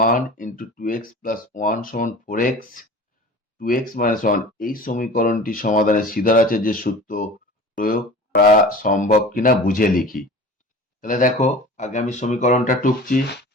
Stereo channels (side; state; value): both; normal; correlation 0.39